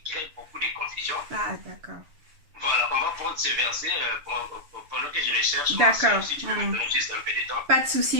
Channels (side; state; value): left; late; 6.9 ms